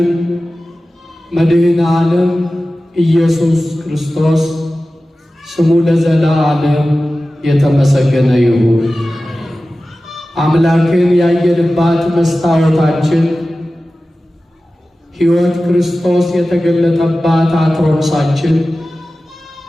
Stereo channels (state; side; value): normal; both; correlation 0.95